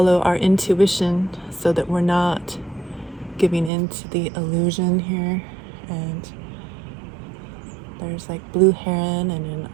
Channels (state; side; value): drops out; left; at 3.7 s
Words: our intuition so that we're not giving into the illusion here. And there's like blue heron and